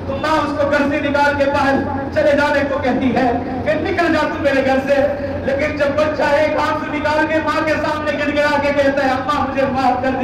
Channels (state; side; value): identical; both; correlation 1.00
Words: تو ماں اس کو گھر سے نکال کے باہر چلے جانے کو کہتی ہے کہ نکل جا تو میرے گھر سے لیکن جب بچہ ایک ہاتھ سے نکال کے ماں کے سامنے گر گرا کے کہتا ہے اماں مجھے معاف کر